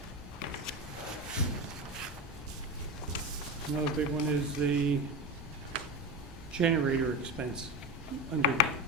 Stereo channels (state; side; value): normal; both; correlation 0.21